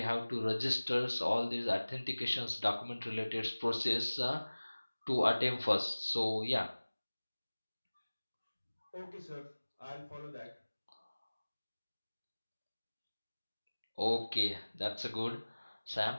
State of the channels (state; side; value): inverted; both; correlation -1.00